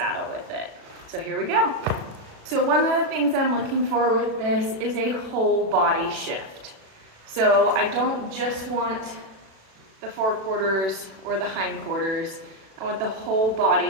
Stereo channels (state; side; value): late; left; 37 ms